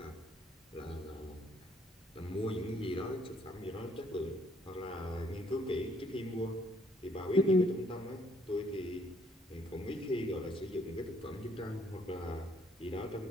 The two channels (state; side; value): normal; both; correlation 0.65